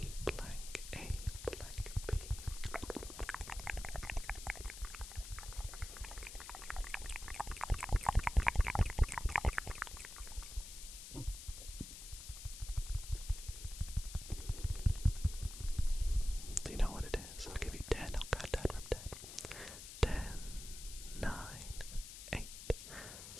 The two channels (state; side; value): noise; left; hiss, 11 dB below the sound